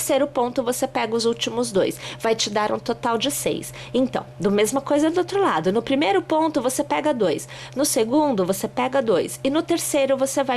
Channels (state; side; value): identical; both; correlation 1.00